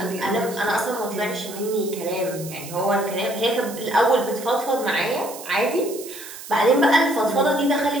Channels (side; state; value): right; noise; hiss, 13 dB below the sound